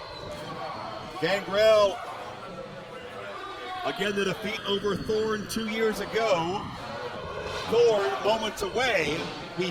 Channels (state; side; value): identical; both; correlation 1.00